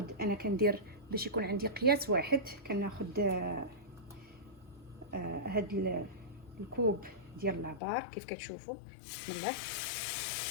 انا كندير باش يكون عندي قياس واحد، كناخذ هاد الكوب ديال العبار كيف كتشوفوا. بسم الله.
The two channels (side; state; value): right; drops out; at 7.8 s